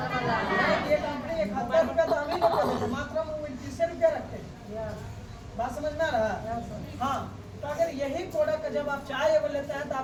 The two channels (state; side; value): identical; both; correlation 1.00